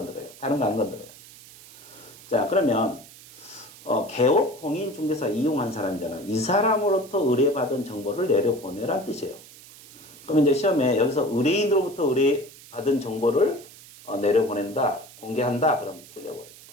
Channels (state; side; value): noise; right; hiss, 20 dB below the sound